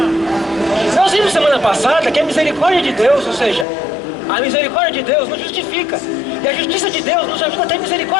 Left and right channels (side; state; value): right; drops out; at 3.7 s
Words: Nós vimos semana passada que a misericórdia de Deus, ou seja, a misericórdia de Deus nos justifica. E a justiça de Deus nos ajuda a ter